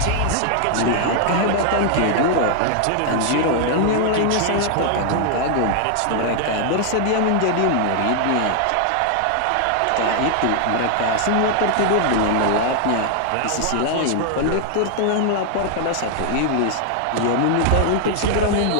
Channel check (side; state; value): both; different; correlation 0.00